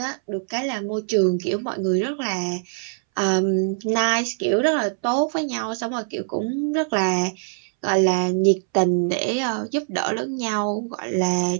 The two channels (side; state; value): left; silent; 63 dB below the other